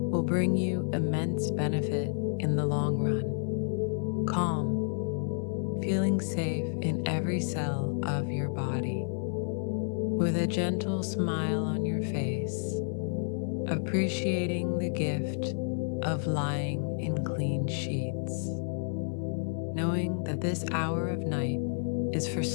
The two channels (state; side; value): silent; right; digital silence